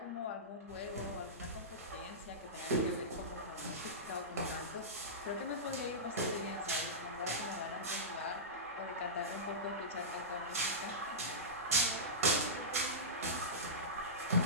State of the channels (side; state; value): both; normal; correlation -0.17